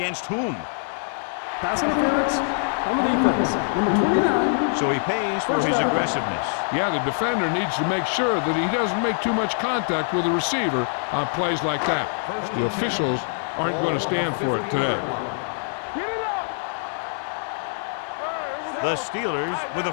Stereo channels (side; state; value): right; silent; digital silence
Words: whom? Pass interference on the defense. Number 29. So he pays for his aggressiveness. Yeah, the defender needs to make sure that he doesn't make too much contact with the receiver on plays like that. The officials aren't going to stand for it today. Get it up. The Steelers with